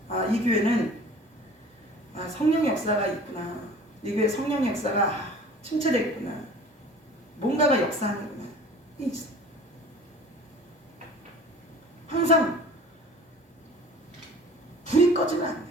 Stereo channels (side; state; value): both; normal; correlation 0.45